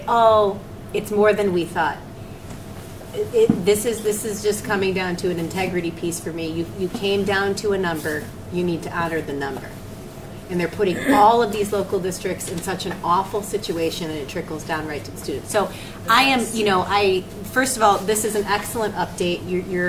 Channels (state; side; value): identical; both; correlation 1.00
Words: oh, it's more than we thought. This is just coming down to an integrity piece for me. You came down to a number, you need to honor the number. and they're putting all of these local districts in such an awful situation, and it trickles down right to the students. So I am, first of all, this is an excellent update.